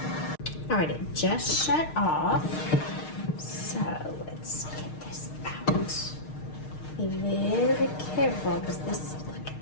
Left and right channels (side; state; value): right; late; 6.5 ms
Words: All right, it just shut off. So let's get this out. Be very careful because this, look at